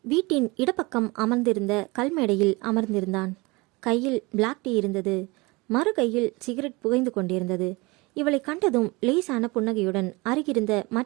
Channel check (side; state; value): left; quieter; 24.7 dB